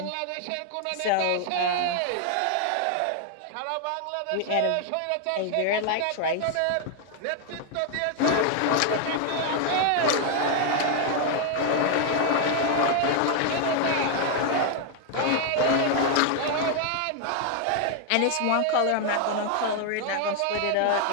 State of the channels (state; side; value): different; both; correlation 0.00